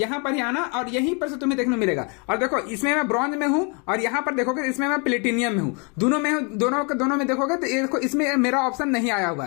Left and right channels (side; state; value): right; quieter; 34.3 dB